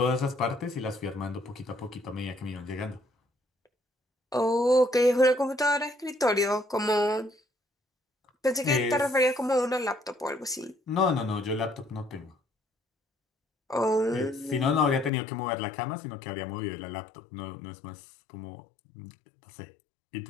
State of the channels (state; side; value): drops out; right; at 15.1 s